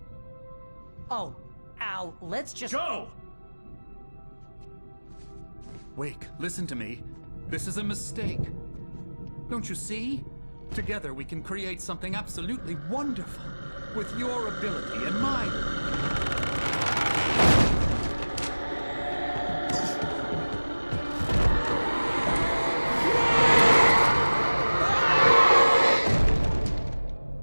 Oh, Al, let's just... Go! Wake, listen to me. This is a mistake. Don't you see? Together we can create something absolutely wonderful. With your ability and mine.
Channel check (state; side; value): inverted; both; correlation -1.00